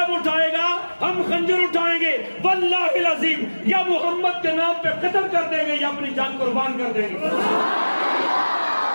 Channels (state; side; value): inverted; both; correlation -1.00